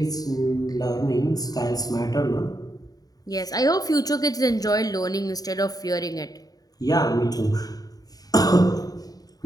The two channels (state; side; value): late; right; 0.18 ms